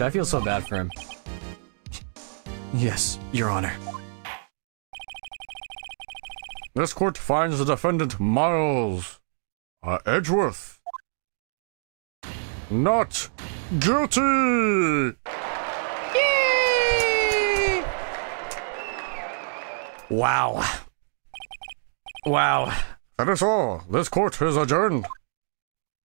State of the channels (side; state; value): left; silent; digital silence